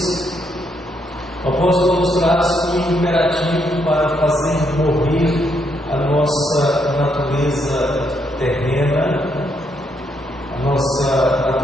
o apóstolo nos traz um imperativo para fazer morrer a nossa natureza terrena, a nossa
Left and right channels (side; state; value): both; normal; correlation 0.75